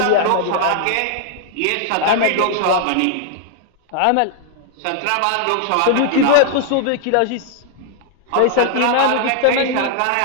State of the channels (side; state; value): both; different; correlation 0.00